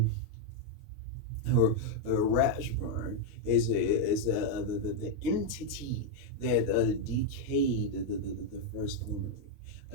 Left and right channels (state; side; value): normal; both; correlation 0.00